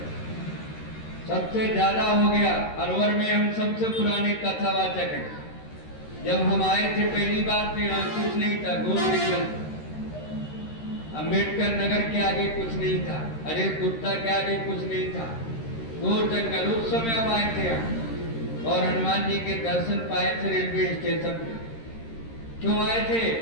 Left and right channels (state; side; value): late; right; 13 ms